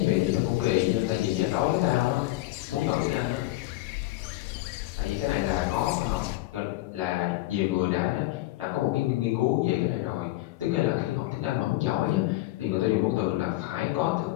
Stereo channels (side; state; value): right; quieter; 17.8 dB